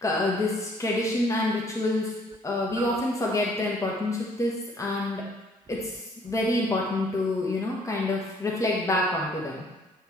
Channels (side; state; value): both; normal; correlation 0.61